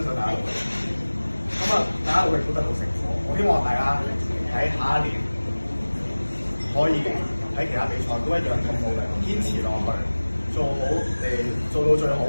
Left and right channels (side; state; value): both; inverted; correlation -1.00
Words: 賞大家努力。咁啊，大家努力都得到成果。我希望大家喺下一年可以喺其他比賽都一樣咁努力，堅持落去，做好做到最好